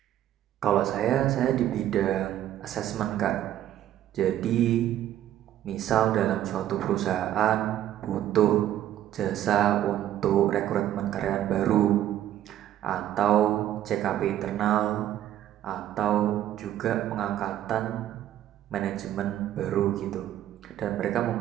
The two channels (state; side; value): quieter; left; 12.1 dB